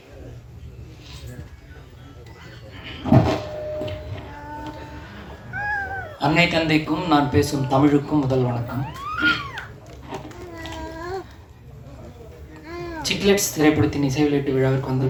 அன்னை தந்தைக்கும் நான் பேசும் தமிழுக்கும் முதல் வணக்கம். சிக்லெட்ஸ் திரைப்படத்தின் இசை வெளியீட்டு விழாவிற்கு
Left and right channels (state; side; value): identical; both; correlation 1.00